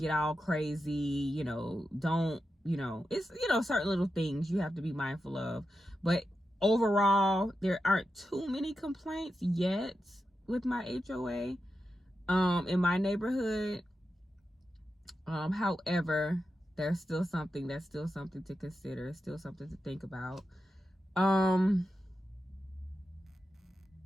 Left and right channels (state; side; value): normal; both; correlation 0.89